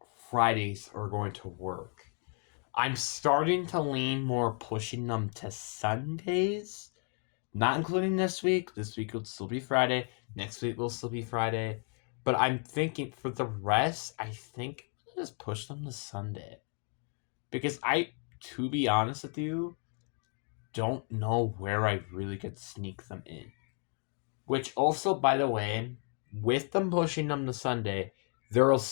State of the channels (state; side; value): quieter; right; 39.6 dB